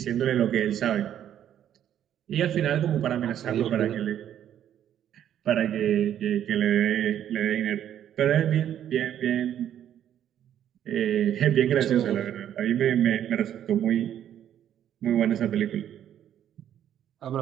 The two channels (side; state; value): left; quieter; 10.4 dB